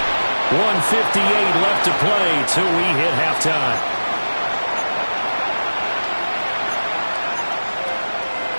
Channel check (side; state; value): both; inverted; correlation -1.00